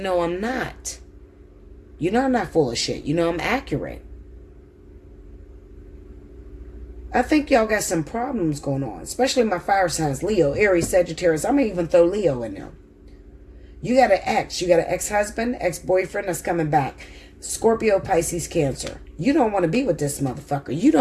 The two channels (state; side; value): identical; both; correlation 1.00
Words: I'm not. You know I'm not full of shit. You know I'm accurate. I think y'all got some problems going on. Especially my fire signs. Leo, Aries, Sagittarius. I'm going to even throw Leo in there. You got an ex. You got an ex-husband, ex-boyfriend that's coming back. Scorpio, Pisces, Cancer. You don't want to be with this motherfucker. You